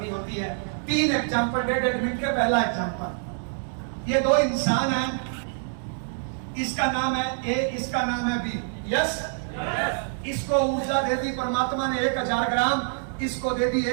होती है। 3 एग्जाम्पल 1.5 मिनट के। पहला एग्जाम्पल, ये 2 इंसान हैं, इसका नाम है ए, इसका नाम है बी। यस। इसको ऊर्जा दे दी परमात्मा ने 1000 ग्राम, इसको दे दी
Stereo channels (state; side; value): silent; left; 61 dB below the other